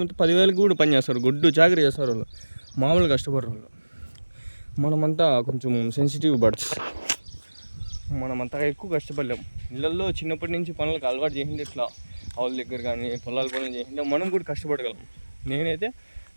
10,000కి కూడా పని చేస్తారు, గుడ్డు చాకరీ చేస్తారు వాళ్ళు, మామూలు కష్టపడరు వాళ్ళు. మనమంతా కొంచెం సెన్సిటివ్ బర్డ్స్, మనమంతా ఎక్కువ కష్టపడలేం. ఇళ్ళల్లో చిన్నప్పటి నుంచి పనులకు అలవాటు చేసిండే, ఇట్లా ఆవుల దగ్గర కానీ పొలాల పనులు చేసిండే మనం కూడా కష్టపడగలం. నేనైతే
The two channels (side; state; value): both; inverted; correlation -1.00